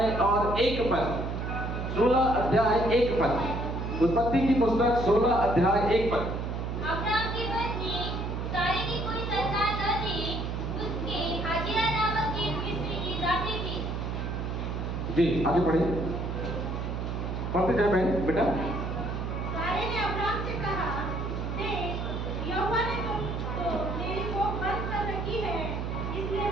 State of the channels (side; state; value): right; noise; hum, 3 dB below the sound